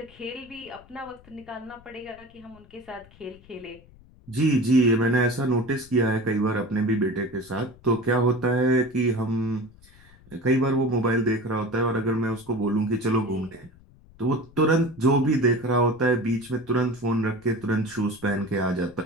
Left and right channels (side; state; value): left; noise; rumble, 25 dB below the sound